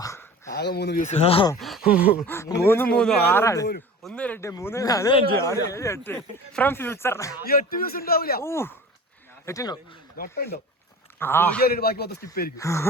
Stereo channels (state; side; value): normal; both; correlation 0.38